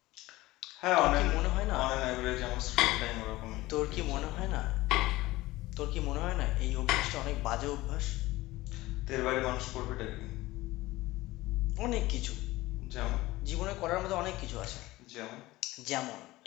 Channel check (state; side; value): quieter; right; 18.6 dB